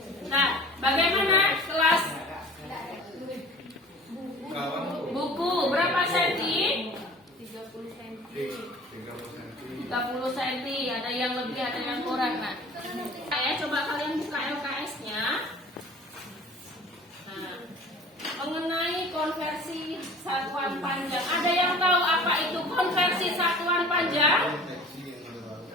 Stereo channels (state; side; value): normal; both; correlation 0.44